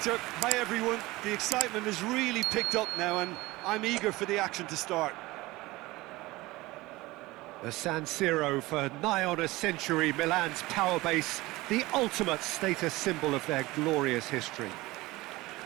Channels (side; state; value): left; quieter; 20.1 dB